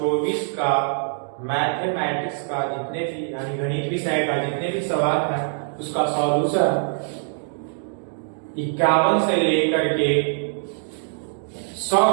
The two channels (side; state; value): left; silent; digital silence